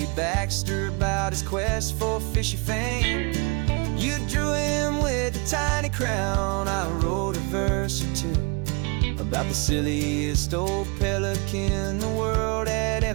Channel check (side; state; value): left; quieter; 30.8 dB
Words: Baxter about his quest for fishy fame. You drew him with a tiny crown, I wrote a verse or two about the silliest old pelican the world had